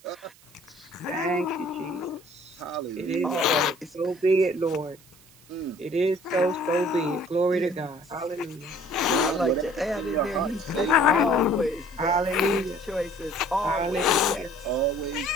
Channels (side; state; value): right; noise; hiss, 26 dB below the sound